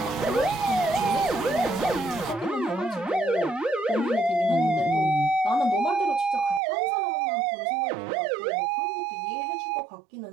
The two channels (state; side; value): drops out; left; at 6.6 s